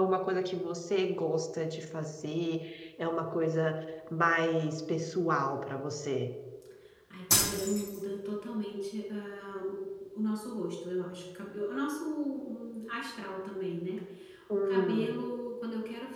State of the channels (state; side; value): identical; both; correlation 1.00